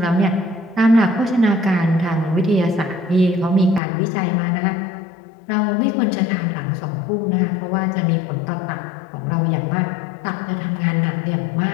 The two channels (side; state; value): right; drops out; at 3.8 s